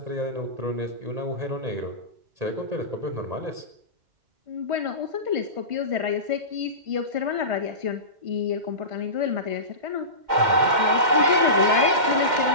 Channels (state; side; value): late; left; 2.1 ms